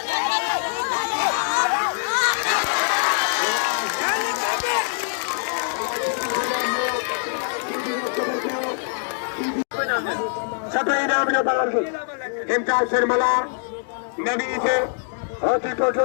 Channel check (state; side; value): silent; right; 62 dB below the other